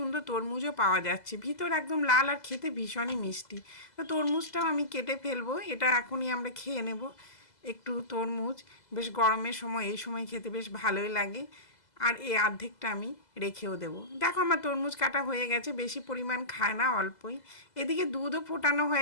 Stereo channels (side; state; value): right; late; 2.0 ms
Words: তরমুজও পাওয়া যাচ্ছে, ভিতর একদম লাল আর খেতে ভীষণই মিষ্টি। তো তরমুজটাও আমি কেটে ফেলবো, এটা এখনই আমরা খেয়ে নেব। একটু তরমুজ বেশ গরমের সময় এই সময় খেতে বেশ ভালোই লাগে। আর এই অর্ধেকটা আমি রেখেও দেবো। দেখো আমার তরমুজ কাটা হয়ে গেছে, বেশি পরিমাণ খায় না, অল্পই। এদিকে দুধও ফোটানো